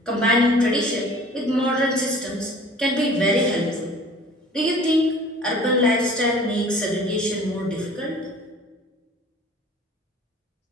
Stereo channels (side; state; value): both; normal; correlation 0.48